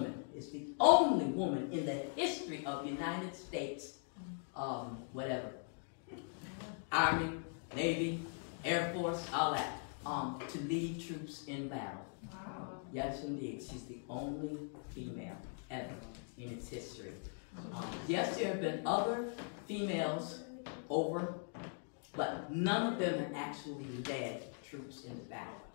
is the only woman in the history of the United States, whatever, Army, Navy, Air Force, all that, to lead troops in battle. Wow. Yes, indeed. She's the only female ever in its history. Yes, there have been other females over, but none of them have actually led troops into battle,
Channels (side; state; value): right; silent; 51 dB below the other